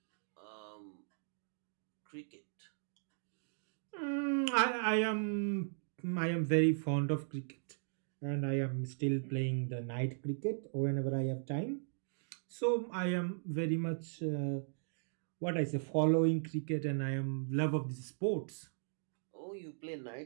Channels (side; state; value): left; silent; digital silence